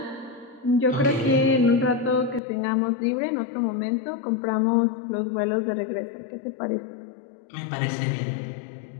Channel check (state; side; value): drops out; right; at 2.4 s